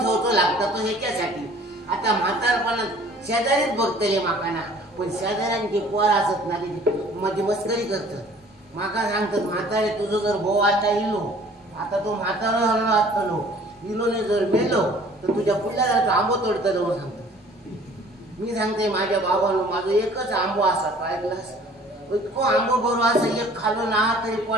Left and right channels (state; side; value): normal; both; correlation 0.52